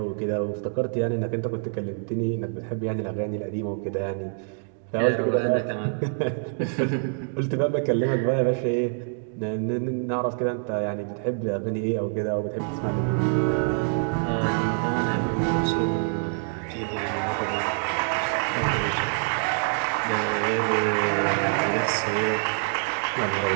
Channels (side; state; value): left; silent; 61 dB below the other